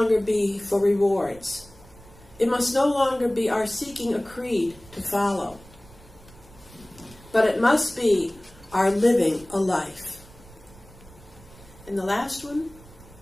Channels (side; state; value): right; noise; rumble, 22 dB below the sound